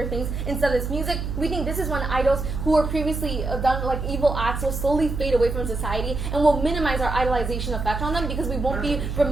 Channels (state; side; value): noise; right; hum, 4 dB below the sound